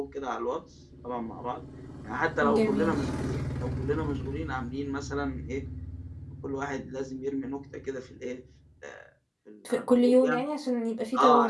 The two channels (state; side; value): identical; both; correlation 1.00